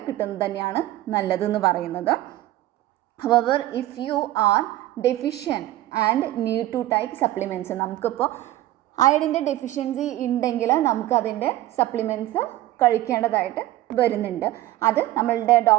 കിട്ടുന്നത് തന്നെയാണ് നല്ലതെന്ന് പറയുന്നത്. However if you are deficient and need to take supplements, നമുക്കിപ്പോൾ അയഡിൻ്റെ ഡെഫിഷ്യൻസി ഉണ്ടെങ്കിൽ നമുക്കതിൻ്റെ സപ്ലിമെൻറ്റ്സ് കഴിക്കേണ്ടതായിട്ട് വരുന്നുണ്ട്. അത് നമ്മളുടെ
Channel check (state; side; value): quieter; left; 15.4 dB